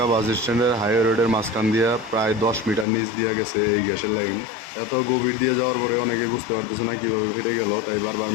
বাস স্ট্যান্ডের হাইওয়ে রোডের মাঝখান দিয়া প্রায় 10 মিটার নিচ দিয়া গেছে এই গ্যাসের লাইন। এত গভীর দিয়ে যাওয়ার পরে অনেকে বুঝতে পারতেছে না কিভাবে ফেটে গেল, তাই বারবার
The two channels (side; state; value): right; drops out; at 2.9 s